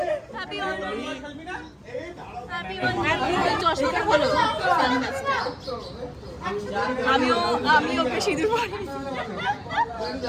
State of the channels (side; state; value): both; identical; correlation 1.00